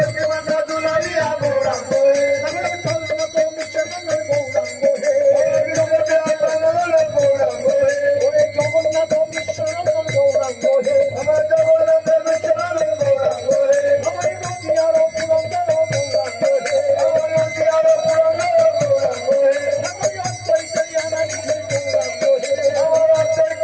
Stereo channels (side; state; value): both; identical; correlation 1.00